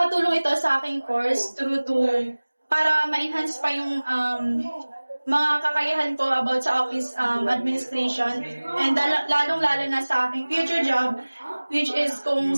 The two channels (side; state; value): both; inverted; correlation -1.00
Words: ito sa aking course para ma-enhance pa yung mga kakayahan ko about sa office administration, and lalong-lalo na sa aking future job, which is kung